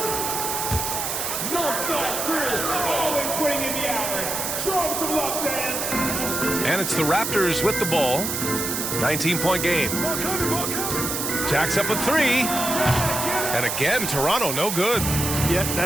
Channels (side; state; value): right; noise; hiss, 2 dB below the sound